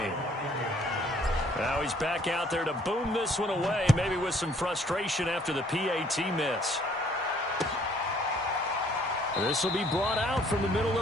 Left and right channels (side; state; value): both; normal; correlation 0.61